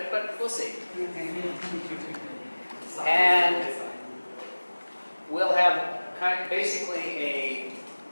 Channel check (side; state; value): both; inverted; correlation -1.00